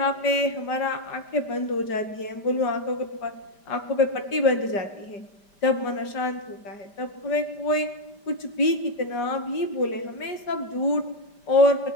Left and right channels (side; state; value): right; late; 5.1 ms